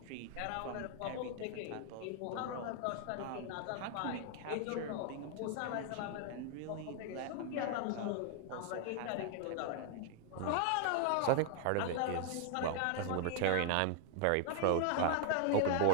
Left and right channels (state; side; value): different; both; correlation 0.00